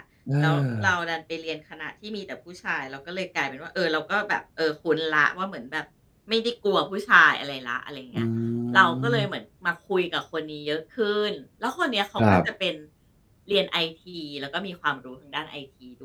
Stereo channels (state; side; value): identical; both; correlation 1.00